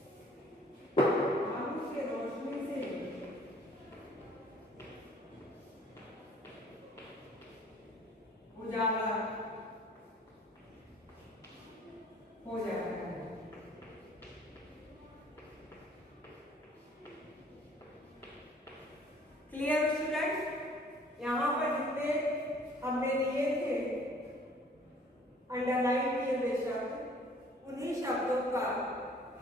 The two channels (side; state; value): both; normal; correlation 0.55